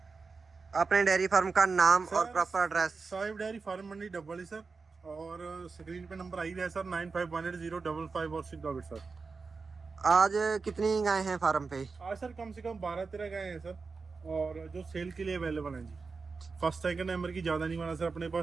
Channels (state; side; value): quieter; left; 4.5 dB